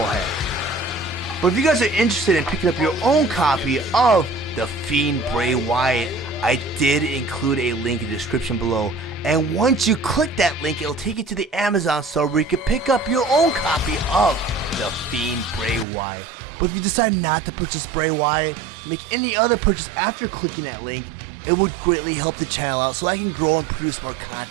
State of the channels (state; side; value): drops out; left; at 15.9 s